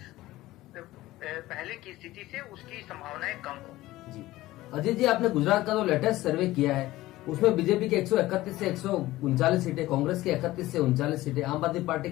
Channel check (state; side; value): quieter; right; 17.1 dB